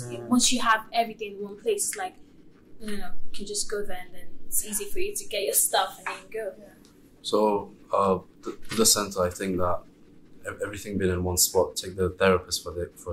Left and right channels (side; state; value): both; identical; correlation 1.00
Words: Once you have everything in one place, it's like, you can just go there, and then it's easy for you to get your stuff and then go. So, the center, I think that everything being in one spot, take the therapist